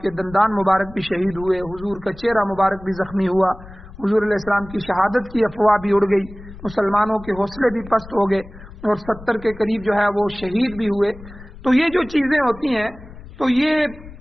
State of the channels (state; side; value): noise; left; rumble, 17 dB below the sound